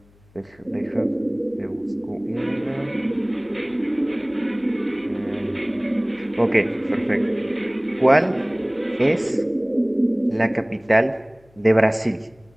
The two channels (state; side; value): noise; left; hum, 30 dB below the sound